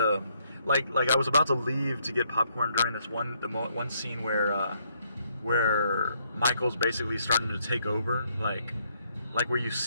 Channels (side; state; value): both; inverted; correlation -0.71